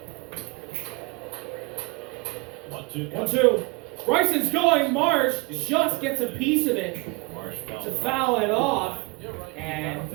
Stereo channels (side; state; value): left; quieter; 26.7 dB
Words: 1-2. Bryson's going. Marsh just gets a piece of it to foul it off. And